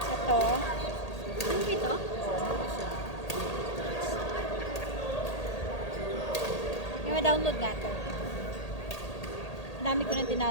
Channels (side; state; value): right; late; 1.8 ms